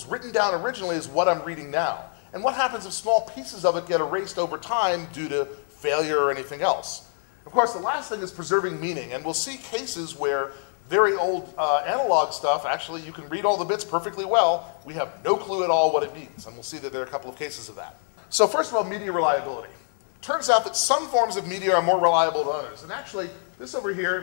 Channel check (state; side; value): silent; right; 61 dB below the other